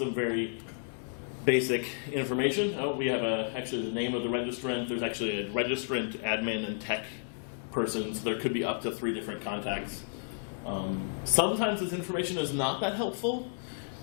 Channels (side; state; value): right; silent; digital silence